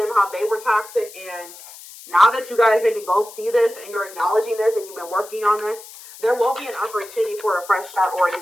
how they were toxic, and now that you guys maybe both see this, and you're acknowledging this, and you've been working on this, there will be an opportunity for a fresh start or a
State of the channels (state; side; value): noise; left; hiss, 17 dB below the sound